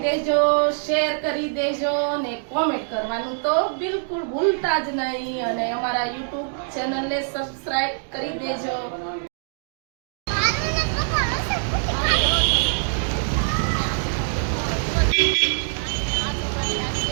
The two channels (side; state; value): left; silent; digital silence